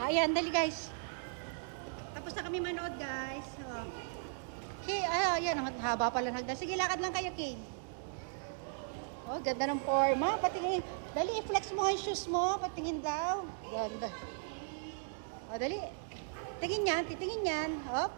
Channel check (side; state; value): left; silent; digital silence